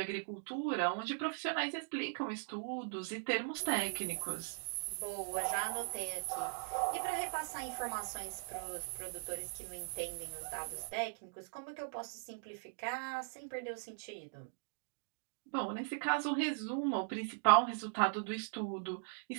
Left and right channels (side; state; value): left; silent; digital silence